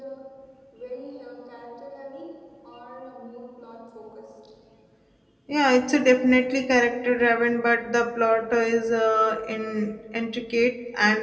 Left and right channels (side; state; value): both; identical; correlation 1.00